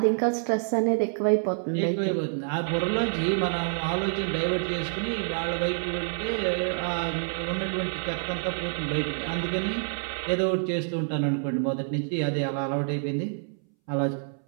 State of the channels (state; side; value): silent; left; 60 dB below the other